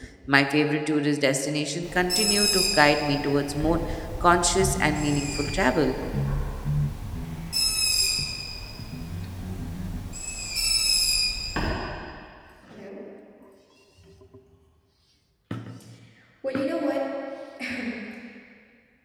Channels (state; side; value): identical; both; correlation 1.00